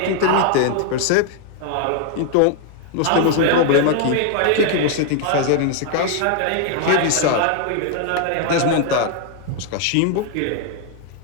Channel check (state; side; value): different; both; correlation 0.00